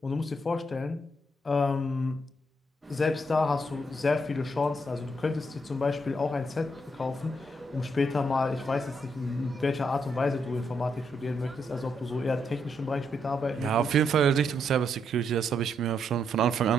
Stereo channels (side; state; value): both; normal; correlation 0.77